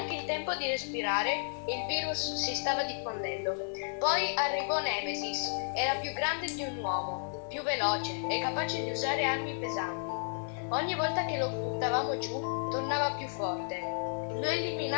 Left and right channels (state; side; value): silent; right; digital silence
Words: il tempo di respirare, il virus si stava diffondendo. Poi arrivò Nemesis. Era più grande di un uomo, più veloce e capace di usare armi pesanti. Ogni volta che lo buttavamo giù, tornava più forte. Lo